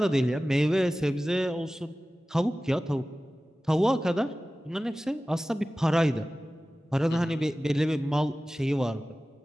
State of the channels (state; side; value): normal; both; correlation 0.96